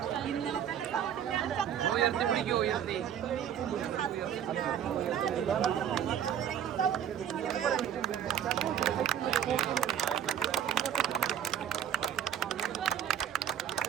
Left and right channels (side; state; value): left; quieter; 9.4 dB